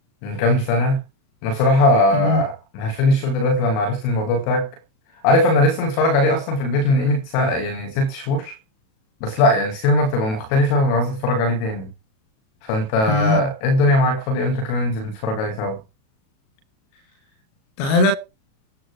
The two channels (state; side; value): late; right; 37 ms